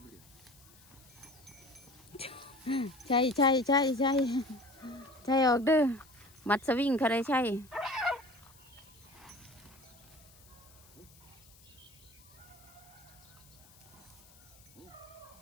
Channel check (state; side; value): noise; left; hiss, 25 dB below the sound